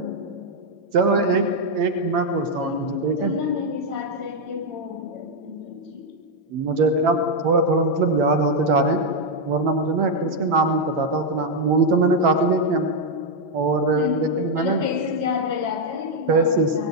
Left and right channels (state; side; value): late; left; 9.1 ms